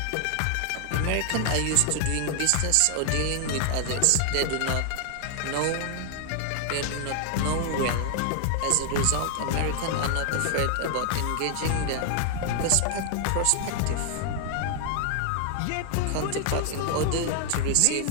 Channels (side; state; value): both; different; correlation 0.00